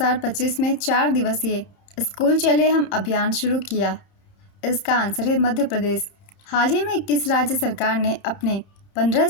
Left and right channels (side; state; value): right; late; 31 ms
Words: में 4 दिवसीय स्कूल चले हम अभियान शुरू किया? इसका आंसर है मध्य प्रदेश। हाल ही में किस राज्य सरकार ने अपने 15